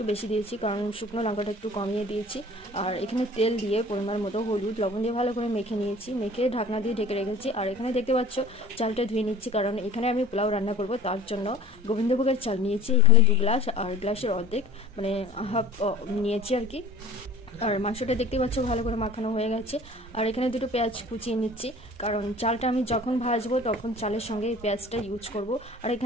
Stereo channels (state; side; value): normal; both; correlation 0.44